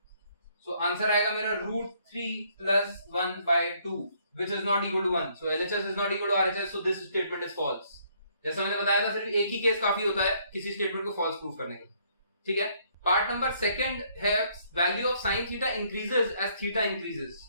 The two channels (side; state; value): both; inverted; correlation -0.67